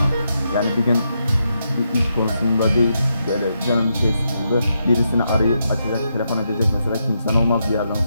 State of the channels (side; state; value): both; inverted; correlation -0.82